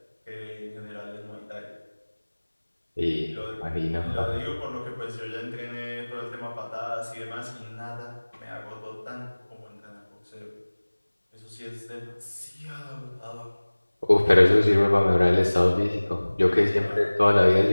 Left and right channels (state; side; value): inverted; both; correlation -1.00